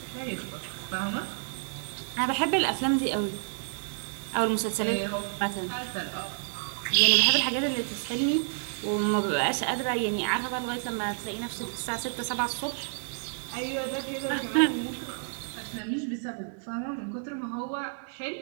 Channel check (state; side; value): silent; left; 58 dB below the other